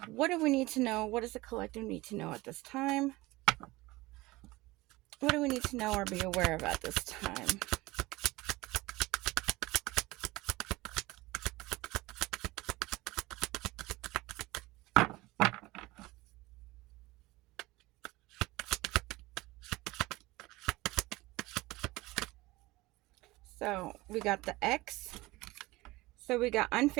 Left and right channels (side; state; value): left; quieter; 20.5 dB